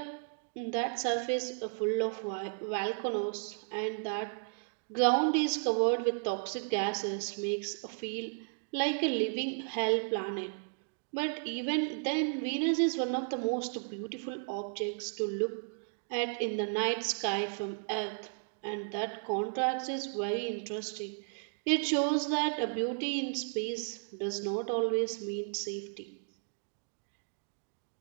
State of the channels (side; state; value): left; silent; digital silence